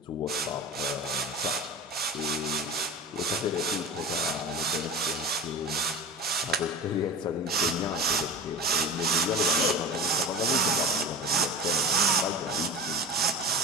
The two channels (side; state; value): both; normal; correlation 0.30